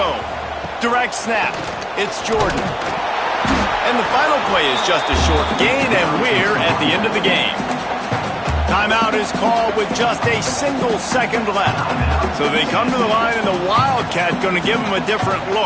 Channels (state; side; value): identical; both; correlation 1.00